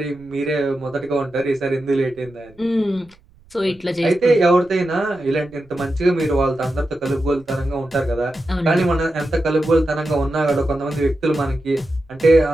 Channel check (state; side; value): noise; right; rumble, 28 dB below the sound